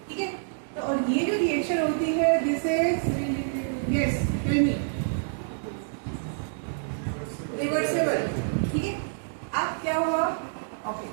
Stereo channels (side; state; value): left; silent; digital silence